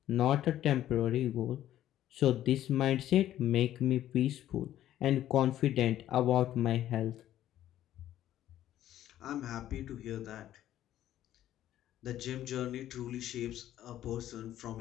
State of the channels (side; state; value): right; quieter; 12.5 dB